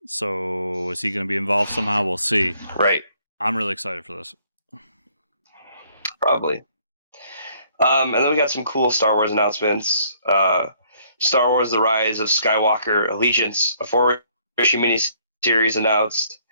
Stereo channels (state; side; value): inverted; both; correlation -0.64